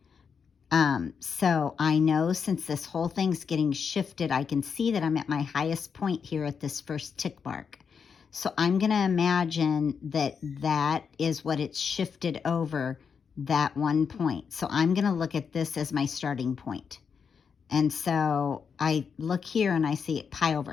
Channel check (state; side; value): quieter; right; 6.3 dB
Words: So I know since this whole thing's getting shifted, I can see that I'm at my highest point here at this first tick mark. So I'm going to imagine that that is what it's shifted over, that one point. So I'm going to look at this as my starting point. And so I look here and I see pi